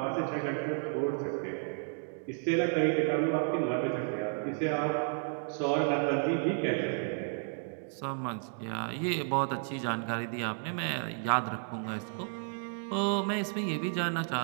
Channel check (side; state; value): left; silent; 56 dB below the other